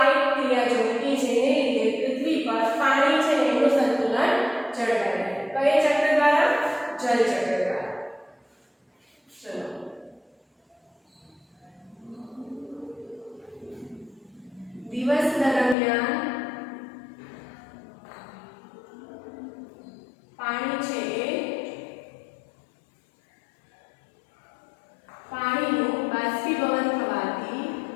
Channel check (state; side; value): drops out; right; at 15.8 s